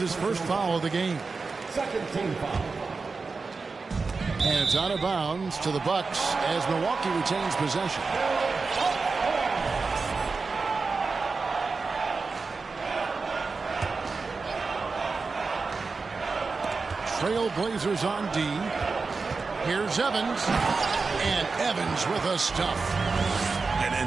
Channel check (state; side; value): quieter; left; 4.3 dB